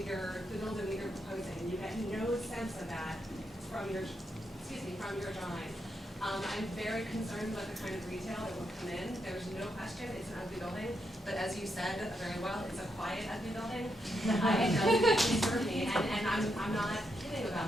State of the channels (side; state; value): both; normal; correlation 0.82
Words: building that you're proposing. You get no sense of that from your drawing. I'm very concerned about the kind of retail that will come in. There's no question it's an ugly building, but as you said very well, it's a quiet ugly building. It doesn't disturb me, and I'm not kidding